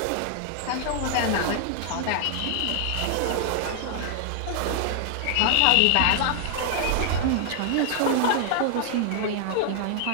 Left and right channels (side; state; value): both; different; correlation 0.00